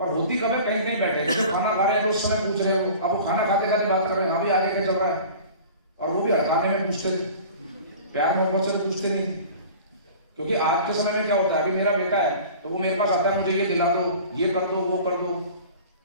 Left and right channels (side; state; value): both; inverted; correlation -0.42